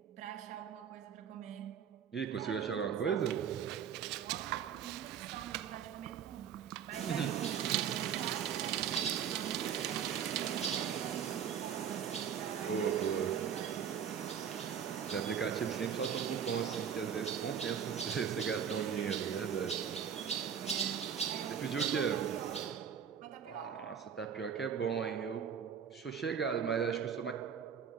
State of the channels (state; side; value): quieter; left; 8.0 dB